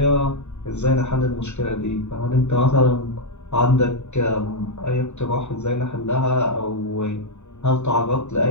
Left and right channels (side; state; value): right; late; 0.82 ms